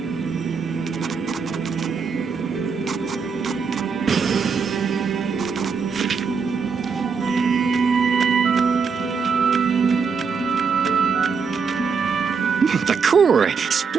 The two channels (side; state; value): left; quieter; 5.6 dB